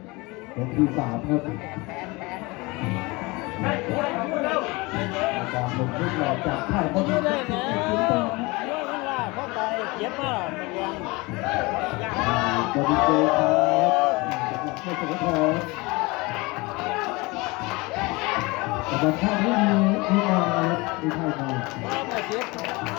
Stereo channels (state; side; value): quieter; right; 24.4 dB